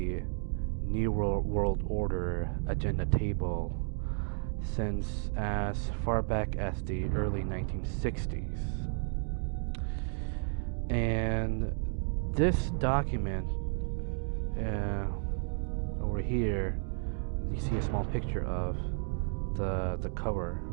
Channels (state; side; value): silent; left; 56 dB below the other